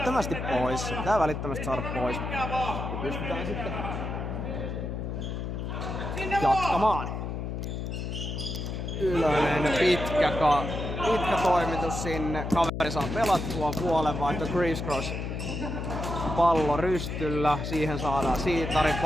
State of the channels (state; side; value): noise; left; hum, 4 dB below the sound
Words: pois. Se pitää välittömästi saada pois. Ja pystytään sitten jatkamaan. Ylönen pitkä toimitus sinne. Kaveri saa pelattua puolenvaihto crisscross. Pallo rystyllä, siihen saadaan Siitari